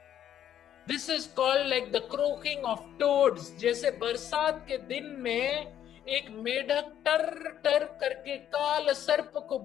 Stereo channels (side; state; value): right; quieter; 10.4 dB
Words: This is called like the croaking of toads. जैसे बरसात के दिन में एक मेढक टर टर करके काल सर्प को